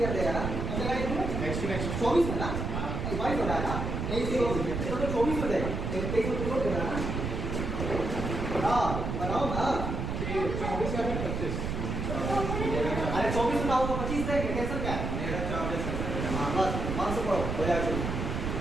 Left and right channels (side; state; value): right; noise; rumble, 3 dB below the sound